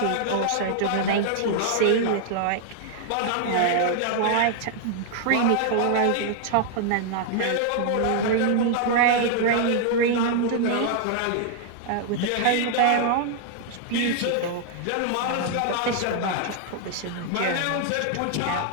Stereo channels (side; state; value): both; different; correlation -0.01